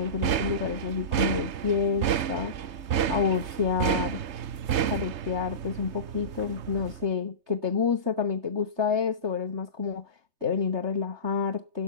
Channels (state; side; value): late; left; 3.3 ms